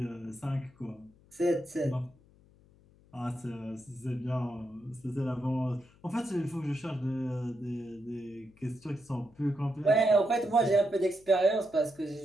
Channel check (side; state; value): left; noise; hum, 28 dB below the sound